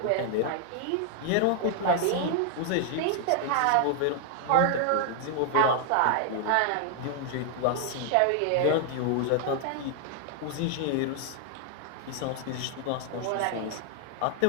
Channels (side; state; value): both; different; correlation 0.00